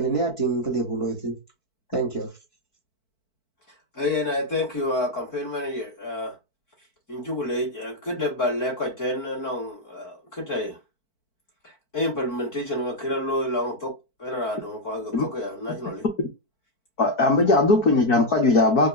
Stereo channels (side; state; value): right; late; 4.5 ms